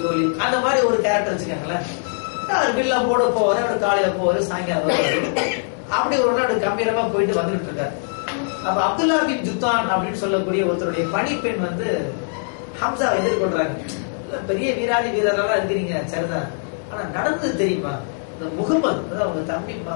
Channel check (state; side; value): silent; right; digital silence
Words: ஜோலி, அந்த மாதிரி ஒரு கேரக்டர் வச்சுக்காங்களேன். அவர் வில்ல போட போவாரு, அவர் காலையில போவாரு, சாயங்காலம் வருவாரு. அப்படி ஒரு நாள் கம்பீரமா போயிட்டு வந்துட்டு இருக்காரு. அப்ப அப்துல்லா பின் ஜுத்தான் அப்படின்னு சொல்லக்கூடிய ஒருத்தருடைய பணிப்பெண் வந்து ஹம்சாவை எதிர்கொள்றாங்க. பெரிய வீராதி வீரர்களா இருக்கிறீங்க சரிதான், ஆனா நடந்தது தெரியுமா, இந்த முகமது அவங்க தம்பி